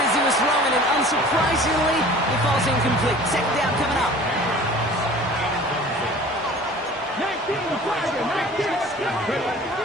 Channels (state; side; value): normal; both; correlation 0.44